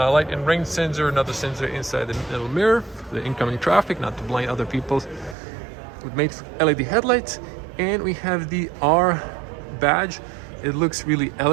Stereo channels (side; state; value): left; drops out; at 5.4 s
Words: and rain sensor, another sensor inside the middle mirror, the incoming traffic, not to blind other people, with made LED headlights. And we have the R badge. It looks really